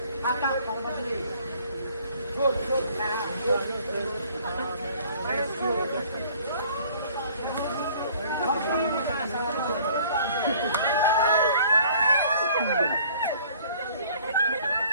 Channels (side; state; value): both; inverted; correlation -0.55